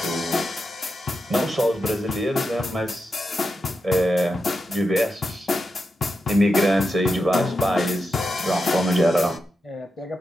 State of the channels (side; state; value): both; normal; correlation 0.88